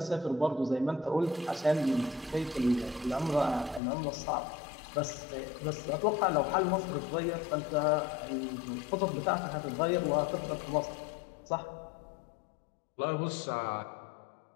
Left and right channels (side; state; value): right; drops out; at 3.8 s